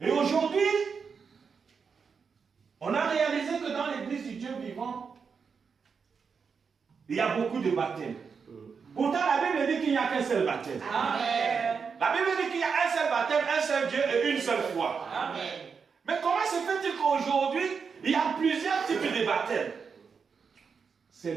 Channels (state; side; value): quieter; left; 5.8 dB